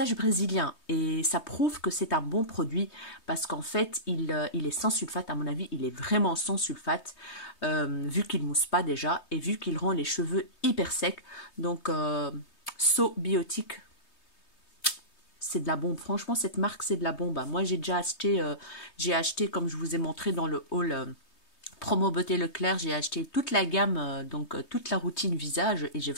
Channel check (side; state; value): right; late; 3.2 ms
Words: brésilien et ça prouve que c'est un bon produit parce qu'en fait il est sans sulfate. À mon avis il est vraiment sans sulfate vu qu'il mousse pas déjà et vu qu'il rend les cheveux hyper secs. Donc So Biotique, c'est de la bombe. Franchement cette marque c'est de la bombe. Moi j'ai déjà acheté, comme je vous ai montré dans le haul Promo Beauté Leclerc, j'ai acheté toute la gamme, donc toute la routine visage et j'ai